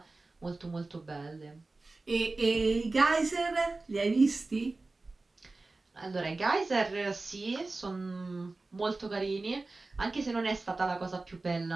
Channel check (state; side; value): quieter; left; 3.4 dB